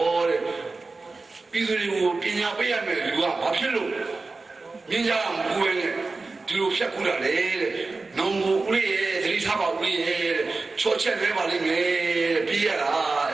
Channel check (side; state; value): left; quieter; 3.7 dB